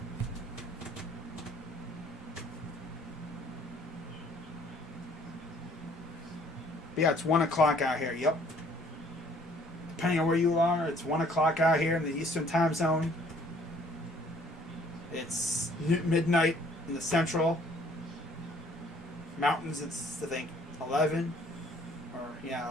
But yeah, it's 1 o'clock out here. Yep. Depending on where you are, it's 1 o'clock out here in the Eastern time zone. It's midnight in the Central. Mountains, it's, I think, 11.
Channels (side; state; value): both; normal; correlation 0.59